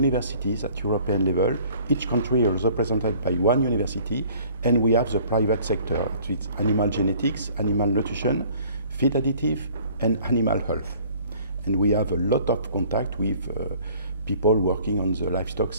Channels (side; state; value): both; inverted; correlation -0.54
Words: at European level. Each country is represented by one university, and we have the private sector. It's animal genetics, animal nutrition, feed additive, and animal health. And we have a lot of contact with people working on the livestock